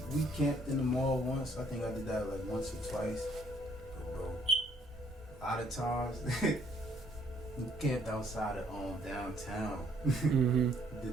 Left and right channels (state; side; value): normal; both; correlation 0.65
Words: camped in the mall once. I think I did that like once or twice. But bro, a lot of times. We camped outside of downtown. Mm-hmm.